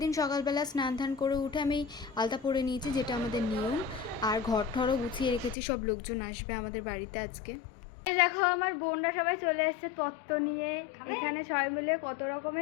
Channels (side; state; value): right; drops out; at 5.6 s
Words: দিন সকালবেলা স্নান ধান করে উঠে আমি আলতা পরে নিয়েছি, যেটা আমাদের নিয়ম। আর ঘর ঠরও গুছিয়ে রেখেছি, সব লোকজন আসবে আমাদের বাড়িতে আজকে। দেখো আমার বোনরা সবাই চলে এসছে তত্ত্ব নিয়ে। এখানে সবাই মিলে কত